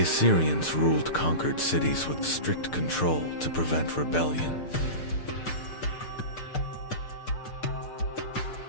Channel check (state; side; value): late; right; 6.7 ms